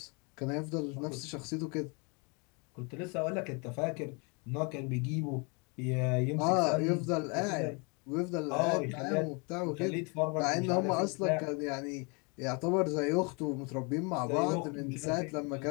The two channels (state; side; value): quieter; right; 32.5 dB